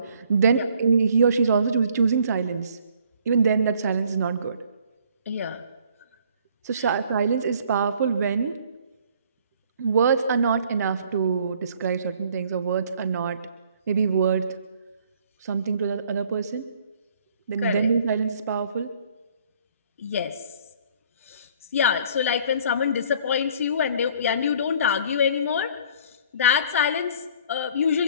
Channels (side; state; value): both; inverted; correlation -0.58